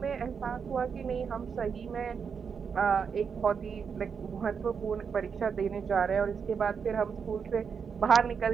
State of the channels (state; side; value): quieter; left; 6.3 dB